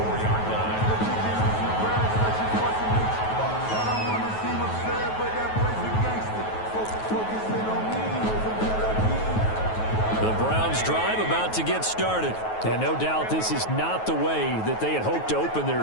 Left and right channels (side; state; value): right; late; 9.3 ms